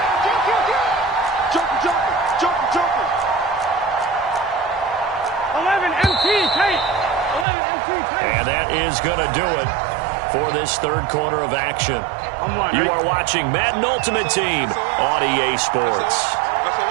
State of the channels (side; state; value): left; drops out; at 7.5 s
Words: Joker. 11 MT, Tate. 11 MT, Tate. And that is going to do it for this 3rd quarter of action. You are watching Madden Ultimate Team on EA Sports.